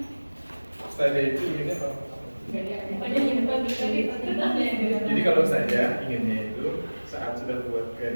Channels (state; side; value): inverted; both; correlation -1.00